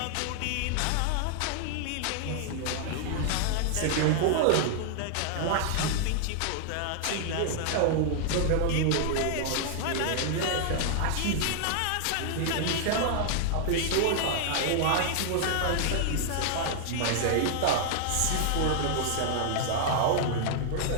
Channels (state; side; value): different; both; correlation -0.01